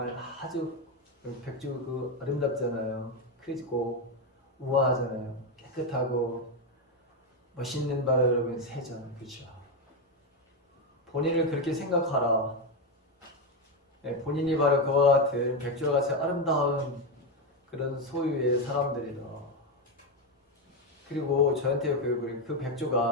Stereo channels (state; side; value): normal; both; correlation 0.08